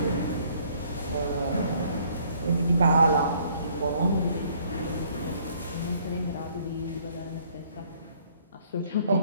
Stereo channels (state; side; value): inverted; both; correlation -0.62